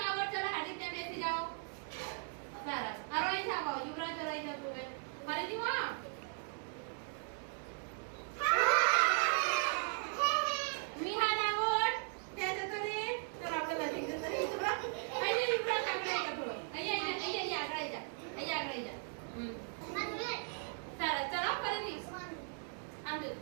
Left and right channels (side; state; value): left; silent; 53 dB below the other